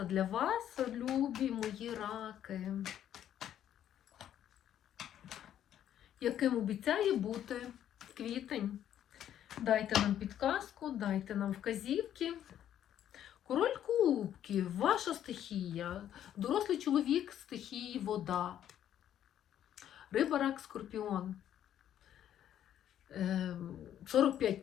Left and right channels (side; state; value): right; quieter; 10.7 dB